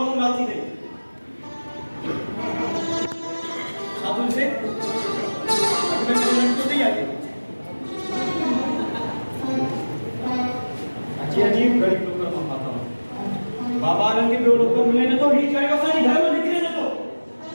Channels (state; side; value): inverted; both; correlation -1.00